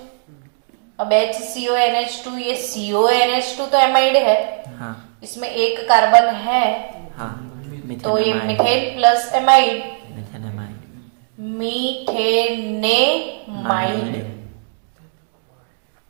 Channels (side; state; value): left; silent; digital silence